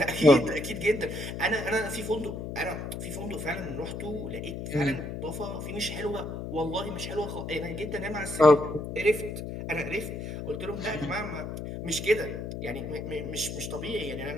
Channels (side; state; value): left; noise; hum, 6 dB below the sound